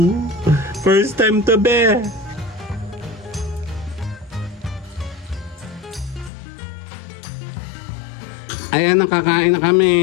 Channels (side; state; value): right; drops out; at 6.3 s